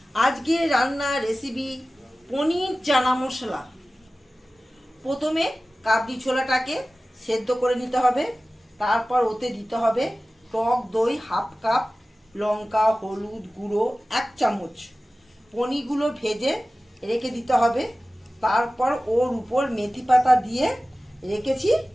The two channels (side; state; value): both; normal; correlation 0.96